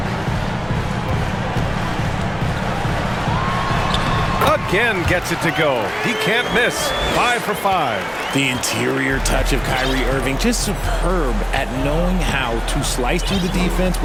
Again gets it to go. He can't miss. 5 for 5. The interior touch of Kyrie Irving, just superb at knowing how to slice through the defense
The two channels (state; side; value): identical; both; correlation 1.00